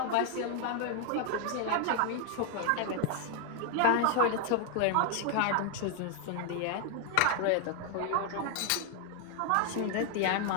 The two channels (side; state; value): both; different; correlation 0.00